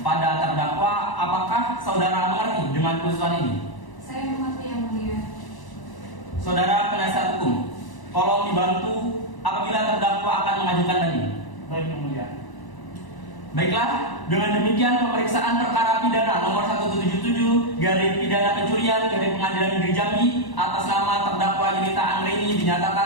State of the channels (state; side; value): late; right; 1.0 ms